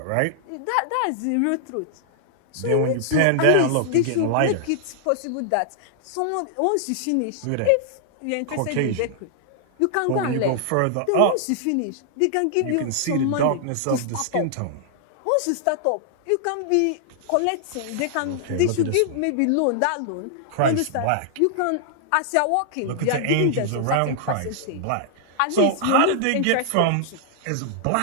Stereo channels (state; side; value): different; both; correlation -0.01